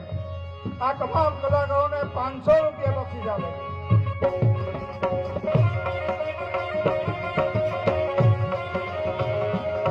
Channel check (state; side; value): identical; both; correlation 1.00